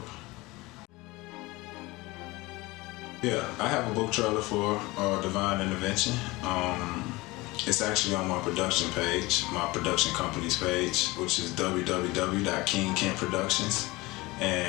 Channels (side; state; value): right; quieter; 21.8 dB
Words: Yeah, I have a book trailer for Divine Intervention. It's actually on my production page, my production company's page, which is www.kingkentproductions.